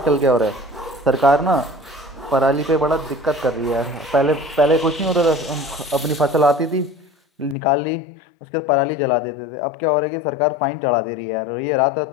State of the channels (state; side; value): drops out; right; at 7.6 s